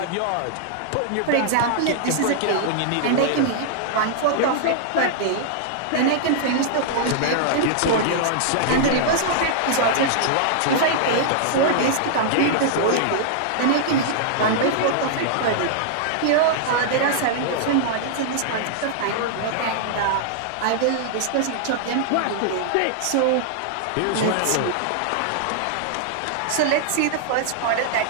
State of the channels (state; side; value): different; both; correlation -0.01